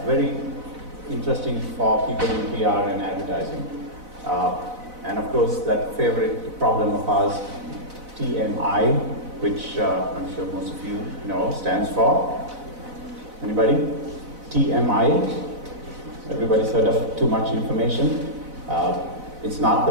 very interesting for people in PR and advertising. And of course, that favorite problem of ours, TMI, which I'm sure most of you know, stands for. Anybody? TMI. Everybody's heard of too much information. It's not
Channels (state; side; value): late; left; 4.0 ms